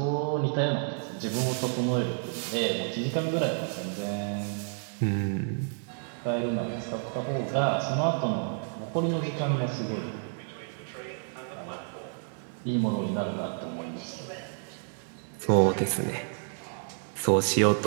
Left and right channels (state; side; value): silent; left; 58 dB below the other